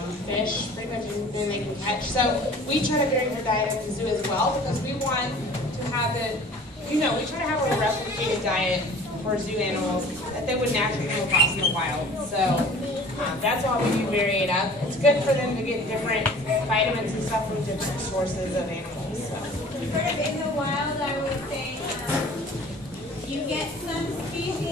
fish, pretty much anything they can catch. So we try to vary their diet at the zoo as well, because we want to have it, you know, we try to have a replicated diet for zoo animals that they would naturally come across in the wild. So that's why we do vary it up. It's good for them to get different vitamins and stuff from different sources of animals. So. Sort of in the wild, I would say you get some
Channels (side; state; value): both; normal; correlation 0.46